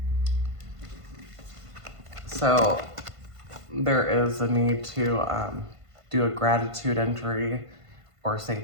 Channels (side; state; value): left; late; 1.5 ms